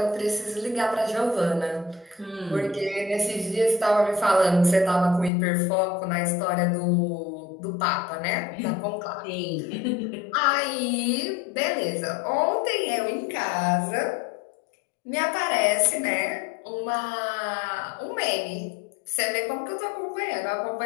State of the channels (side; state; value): right; drops out; at 5.3 s